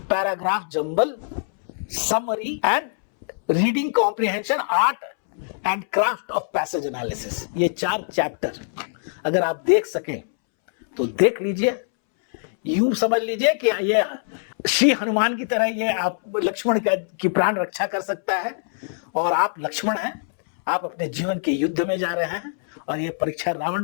paragraph jumble, summary and reading comprehension, art and craft of passage analysis. ये 4 चैप्टर अगर आप देख सकें तो देख लीजिए, यूं समझ लीजिए कि ये श्री हनुमान की तरह ये आप लक्ष्मण की प्राण रक्षा कर सकता है, और आप लक्ष्मण हैं, आप अपने जीवन के युद्ध में जा रहे हैं और ये परीक्षा रावण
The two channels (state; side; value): silent; right; 63 dB below the other